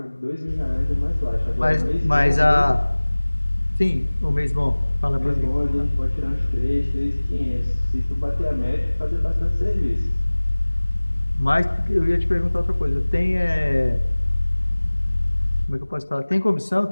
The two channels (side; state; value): both; inverted; correlation -1.00